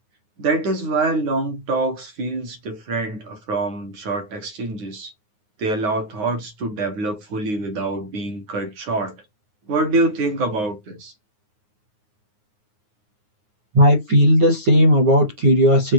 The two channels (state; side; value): late; left; 9.6 ms